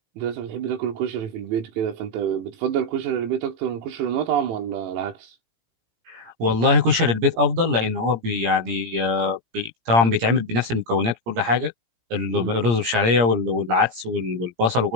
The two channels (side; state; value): left; late; 17 ms